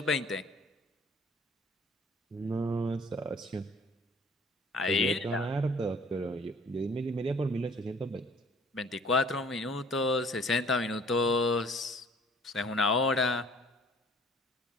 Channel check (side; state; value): both; normal; correlation 0.54